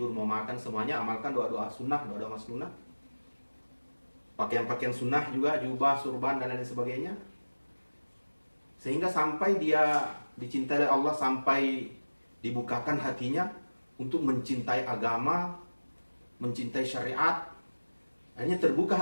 mau makan, semuanya amalkan doa-doa sunnah, doa-doa masnunah. Pakaian-pakaian sunnah juga, jubah, surban, dan lain sebagainya. Sehingga sampai dia dicintai oleh Allah, sampai dibukakan hatinya untuk mencintai agama, mencintai syariat. Akhirnya terbuka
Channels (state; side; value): inverted; both; correlation -1.00